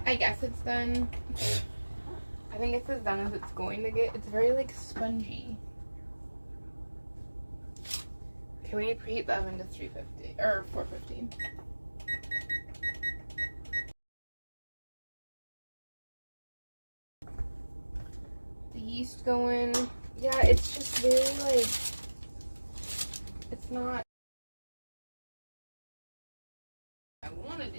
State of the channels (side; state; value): both; inverted; correlation -1.00